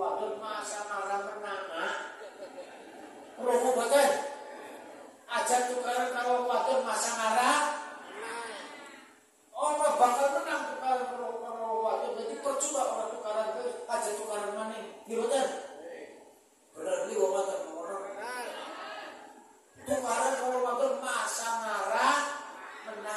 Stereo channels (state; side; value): identical; both; correlation 1.00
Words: masa marah menang. Promo bagian. Aja tukaran karo wadon masa marah. Orang bakal menang tukaran kalau waktu jadi percuma orang tukaran itu aja tukaran mana gimana? Benar beli orang tukaran kalau waktu masa marah